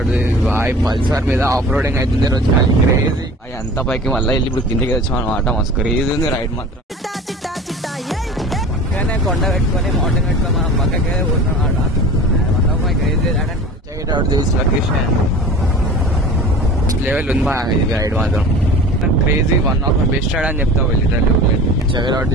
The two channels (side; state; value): both; normal; correlation 0.40